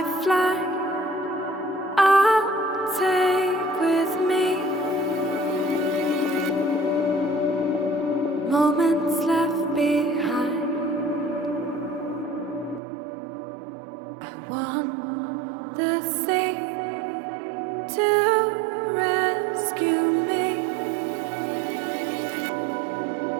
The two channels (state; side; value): drops out; left; at 12.8 s